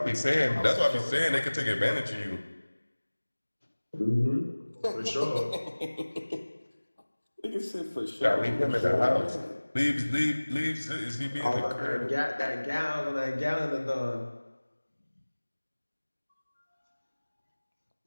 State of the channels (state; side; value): inverted; both; correlation -1.00